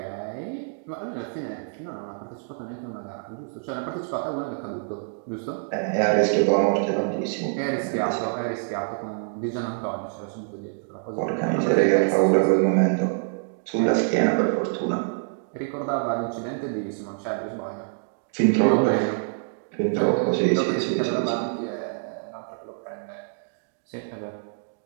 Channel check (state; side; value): silent; left; digital silence